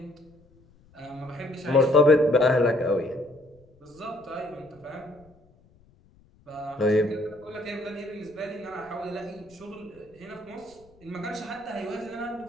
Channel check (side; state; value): left; noise; rumble, 29 dB below the sound